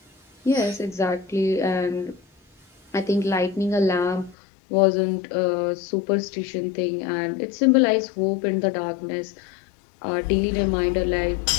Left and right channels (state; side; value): drops out; right; at 4.4 s